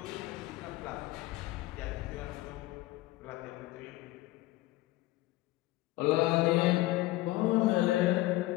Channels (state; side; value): quieter; right; 17.9 dB